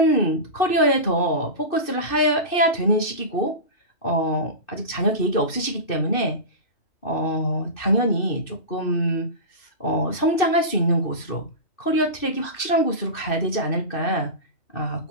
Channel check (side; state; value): right; late; 2.6 ms